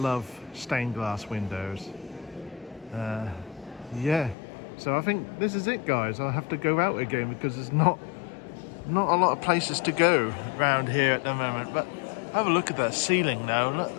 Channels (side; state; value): right; drops out; at 4.4 s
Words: stained glass windows. Yeah, so I think this is it, guys. I'll have to go out again because there's not a lot of places to go around here at the moment. But have a look at that ceiling now. Look